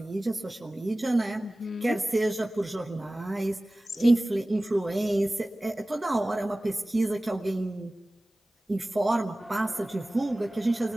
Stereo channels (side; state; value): both; normal; correlation 0.98